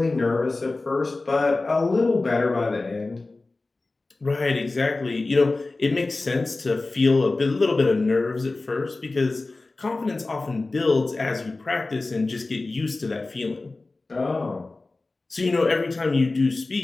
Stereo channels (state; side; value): quieter; right; 3.3 dB